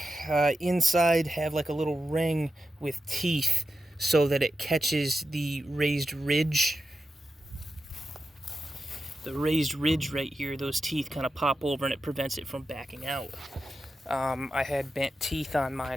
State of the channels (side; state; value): both; normal; correlation 0.89